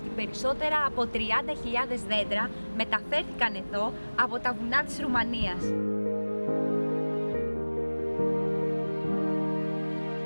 περισσότερα από 30.000 δέντρα μεταφέρθηκαν εδώ από τα βουνά της Ρουμανίας.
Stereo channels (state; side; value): inverted; both; correlation -1.00